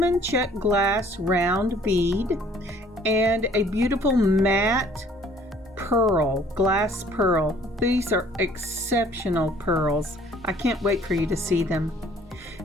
Czech glass round bead and a beautiful matte pearl, glass pearl. These are exceptional pearls. I can't wait for you to see them.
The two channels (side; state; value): both; normal; correlation 0.57